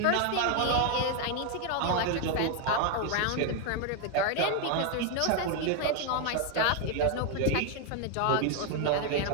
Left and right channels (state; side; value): different; both; correlation 0.01